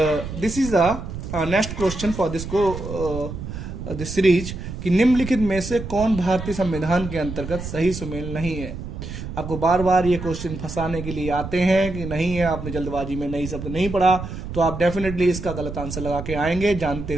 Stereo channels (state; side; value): noise; right; rumble, 8 dB below the sound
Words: this is the next question for this this series कि निम्नलिखित में से कौन भारतीय संविधान के अंतर्गत सही सुमेल नहीं है। आपको बार बार ये क्वेश्चन फंसाने के लिए आते हैं कि नहीं है, आपने जल्दबाजी में नई शब्द नहीं पढ़ा, तो आप डेफिनेटली इसका गलत आंसर लगा के आएंगे जानते